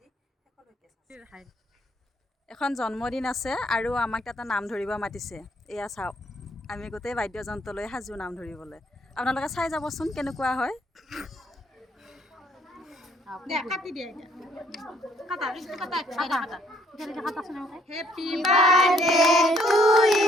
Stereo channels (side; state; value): both; normal; correlation 0.66